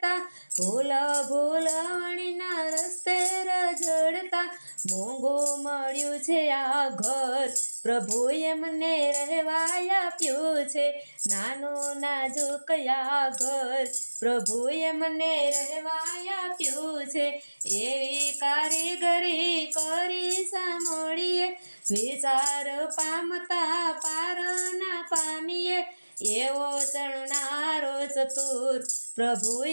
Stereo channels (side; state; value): both; inverted; correlation -1.00